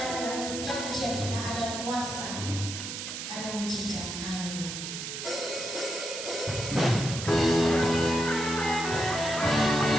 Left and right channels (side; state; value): right; noise; hiss, 6 dB below the sound